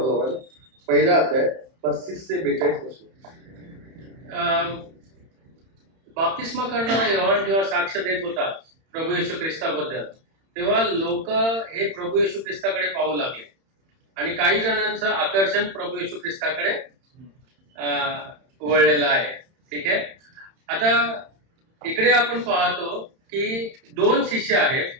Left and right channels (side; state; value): left; late; 31 ms